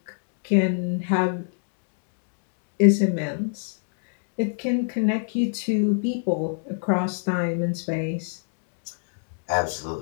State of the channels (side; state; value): right; silent; digital silence